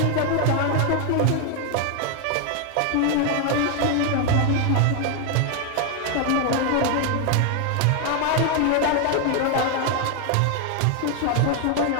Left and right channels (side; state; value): both; different; correlation 0.01